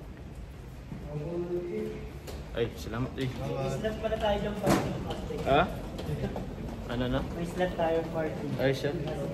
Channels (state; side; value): identical; both; correlation 1.00